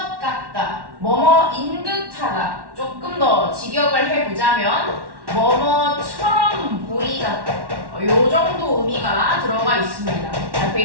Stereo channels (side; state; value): left; late; 1.1 ms